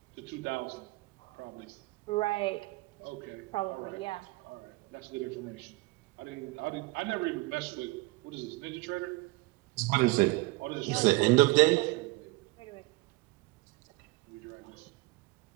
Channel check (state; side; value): quieter; left; 22.6 dB